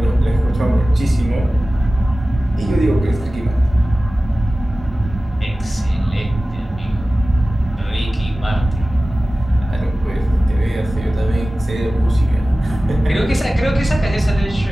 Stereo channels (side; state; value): both; normal; correlation 0.96